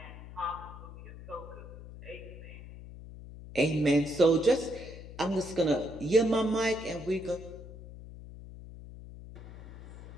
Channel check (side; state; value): left; noise; hum, 14 dB below the sound